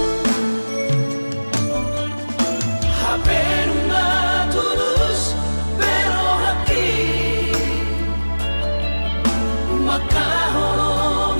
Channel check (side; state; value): both; inverted; correlation -1.00